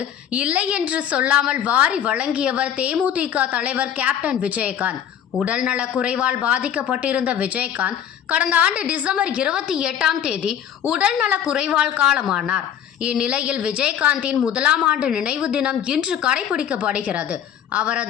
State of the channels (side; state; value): right; quieter; 9.3 dB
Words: இல்லை என்று சொல்லாமல் வாரி வழங்கியவர் தேமுதிக தலைவர் கேப்டன் விஜயகாந்த். உடல்நல குறைவால் பாதிக்கப்பட்டிருந்த விஜயகாந்த் கடந்த ஆண்டு டிசம்பர் 28 உடல்நல குறைவால் காலமானார். இந்நிலையில் விஜயகாந்தின் முதலாம் ஆண்டு நினைவு தினம் இன்று கடைபிடிக்கப்படுகிறது.